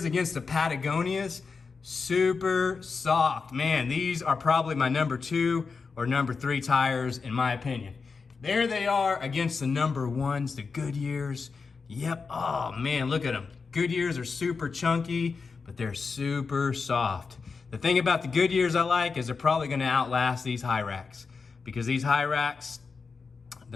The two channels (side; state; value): right; quieter; 4.9 dB